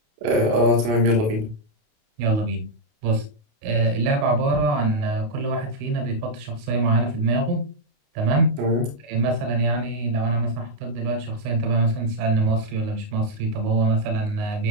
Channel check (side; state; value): left; late; 28 ms